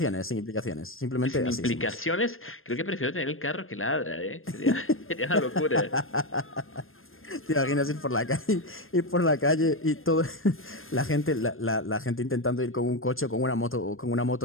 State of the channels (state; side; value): late; right; 0.60 ms